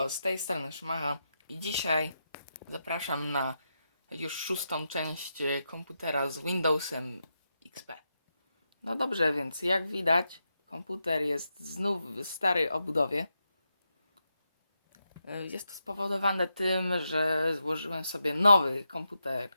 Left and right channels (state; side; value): inverted; both; correlation -0.86